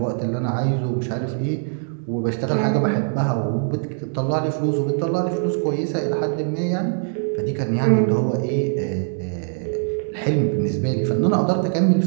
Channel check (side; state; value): left; silent; digital silence